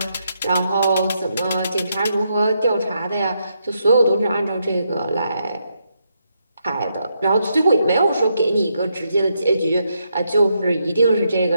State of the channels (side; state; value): both; inverted; correlation -0.80